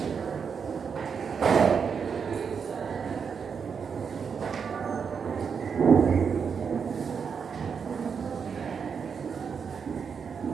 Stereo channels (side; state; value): left; quieter; 6.4 dB